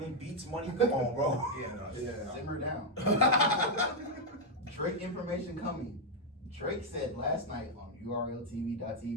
Beats money. Come on, bro. Yeah, no, Yeah. Simmer down. Drake information coming. Drake said last night on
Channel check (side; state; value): both; normal; correlation 0.00